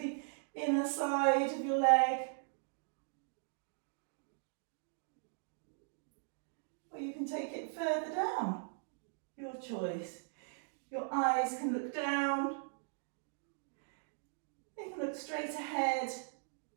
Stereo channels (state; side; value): silent; left; digital silence